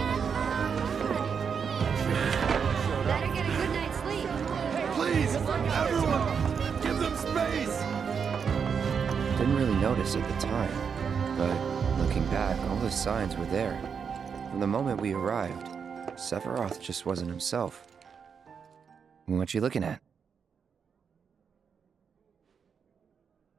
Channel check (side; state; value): left; quieter; 6.5 dB